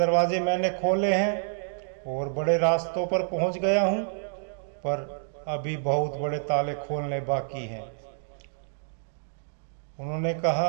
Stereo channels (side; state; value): left; silent; digital silence